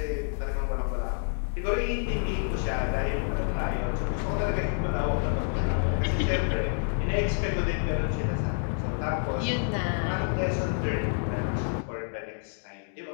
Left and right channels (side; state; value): right; silent; 59 dB below the other